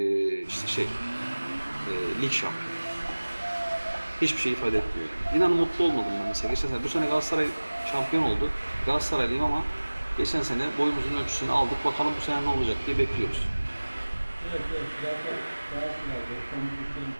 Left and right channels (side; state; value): both; inverted; correlation -1.00